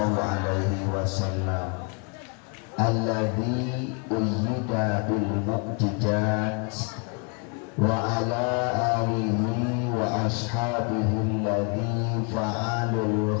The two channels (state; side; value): quieter; right; 36.1 dB